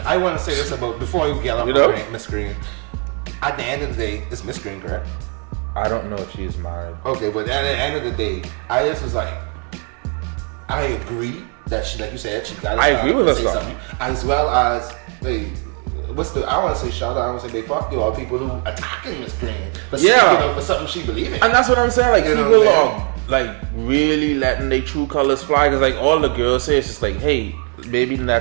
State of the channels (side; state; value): left; quieter; 35.8 dB